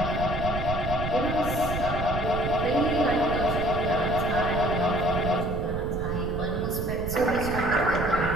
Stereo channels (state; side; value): noise; right; rumble, 4 dB below the sound